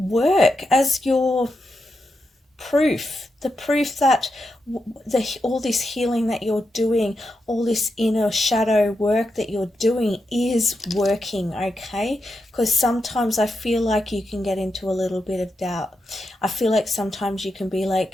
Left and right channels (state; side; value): normal; both; correlation 0.86